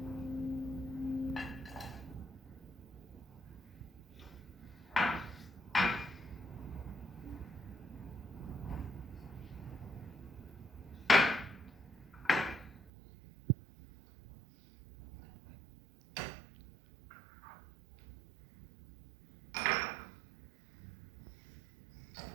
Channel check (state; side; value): drops out; left; at 12.7 s